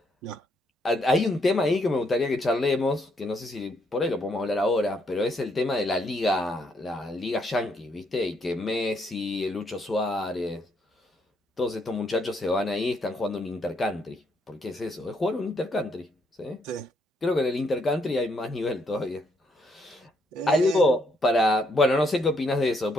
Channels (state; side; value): normal; both; correlation 0.73